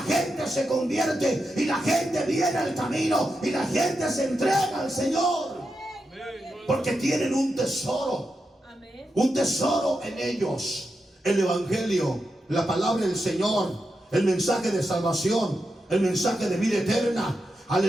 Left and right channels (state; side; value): normal; both; correlation 0.87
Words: gente se convierte, y la gente viene al camino, y la gente se entrega al Señor. Porque tienen un tesoro, un tesoro en ellos: el evangelio, la palabra del Señor, el mensaje de salvación, el mensaje de vida eterna.